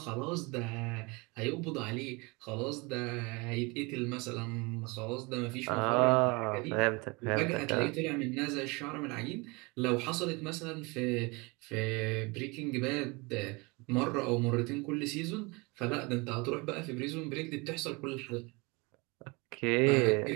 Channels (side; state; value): left; quieter; 27.2 dB